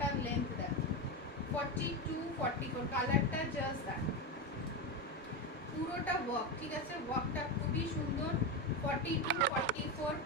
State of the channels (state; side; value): normal; both; correlation 0.14